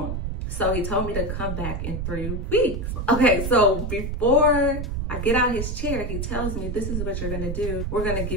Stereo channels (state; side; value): noise; right; rumble, 3 dB below the sound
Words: So he told me to come back in 3 weeks. Okay, so before I get out his chair, he tells me, this is what you're gonna do. We're gonna